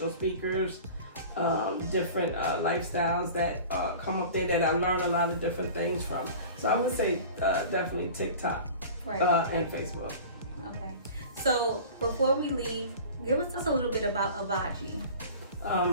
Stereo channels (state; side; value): inverted; both; correlation -0.40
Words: speakers, different lifestyles that come up there that I learn a lot of different things from. So I would say definitely TikTok, and Facebook. Okay. So before we leave, give us just a little bit about Avodgy.